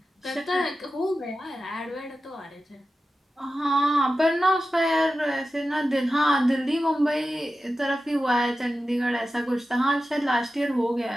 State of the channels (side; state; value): both; normal; correlation 0.93